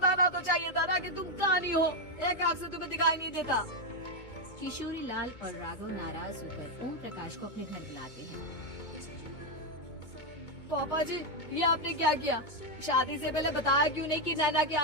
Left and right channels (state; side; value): late; right; 2.2 ms